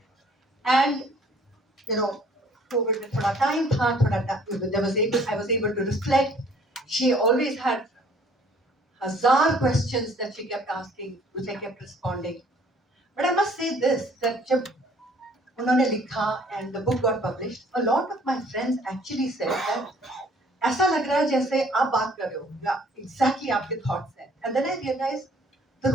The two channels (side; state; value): both; normal; correlation 0.57